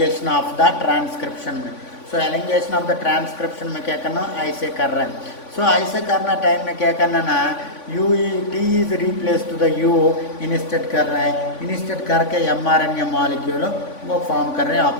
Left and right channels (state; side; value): late; right; 3.5 ms